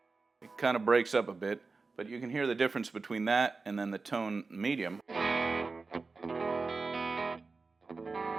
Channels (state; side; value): quieter; left; 4.1 dB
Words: kind of breaks up a bit, but you can hear the difference between that and then the tone medium.